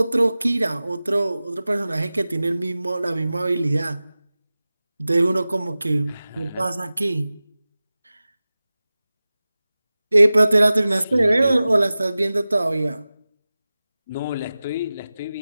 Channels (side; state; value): both; inverted; correlation -0.96